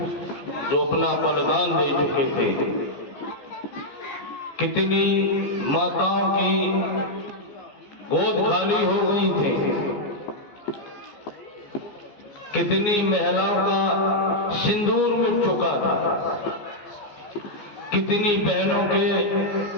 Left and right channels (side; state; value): right; late; 14 ms